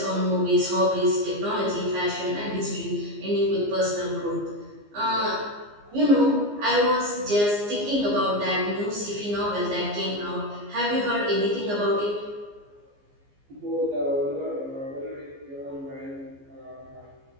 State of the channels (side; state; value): left; late; 15 ms